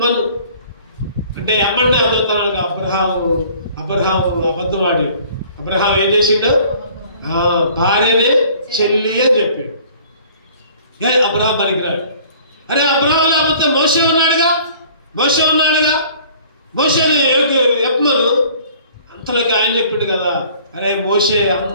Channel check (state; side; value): inverted; both; correlation -0.52